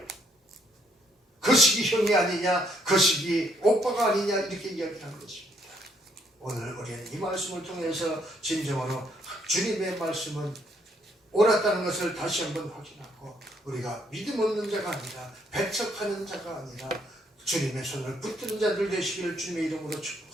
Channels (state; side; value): normal; both; correlation 0.70